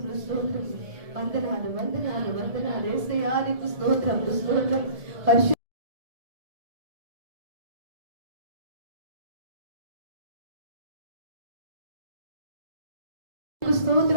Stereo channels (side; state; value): left; late; 1.7 ms